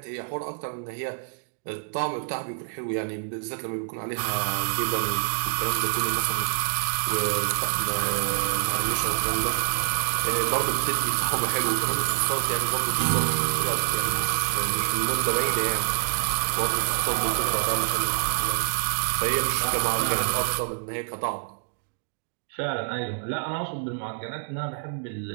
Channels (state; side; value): silent; left; digital silence